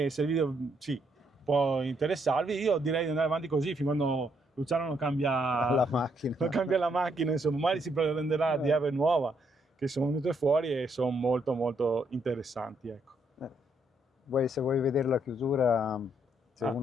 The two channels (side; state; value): both; normal; correlation 0.73